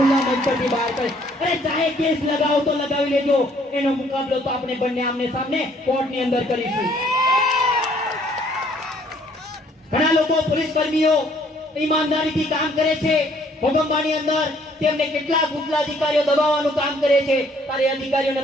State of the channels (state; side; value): normal; both; correlation 0.62